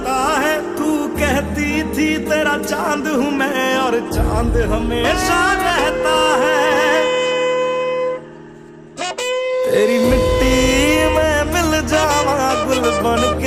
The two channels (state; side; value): identical; both; correlation 1.00